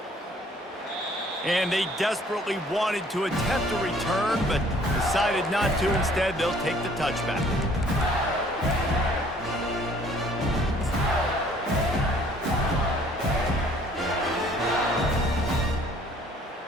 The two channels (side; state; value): both; normal; correlation 0.58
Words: And they desperately wanted to attempt a return, but decided not to. Instead, they'll take the touchback.